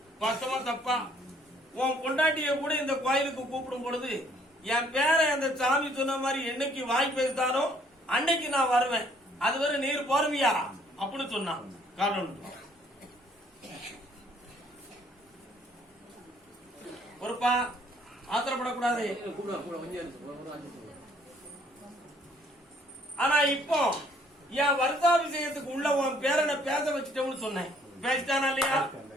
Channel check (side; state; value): both; normal; correlation 0.63